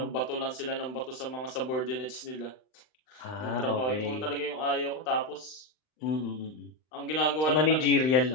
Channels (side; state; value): right; late; 39 ms